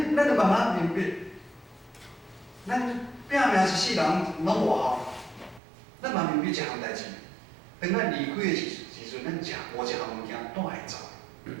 咱就慢慢明白，咱拼命一世人拢无效，咱嘛明白一项代志，当咱离开的时阵，咱无一项物件带会走。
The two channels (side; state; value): left; drops out; at 5.6 s